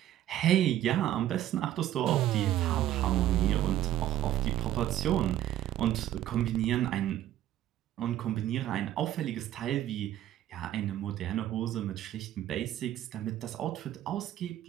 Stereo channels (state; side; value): quieter; left; 12.6 dB